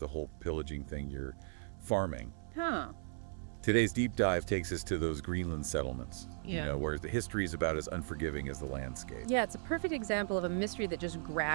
whole pillaging thing, you're farming. Huh. Today's deep dive takes us to those Greenland settlements, Yeah. where the history is about as unforgiving as the landscape. Yeah, it's a perfect example of a mystery that just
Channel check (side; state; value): left; silent; 53 dB below the other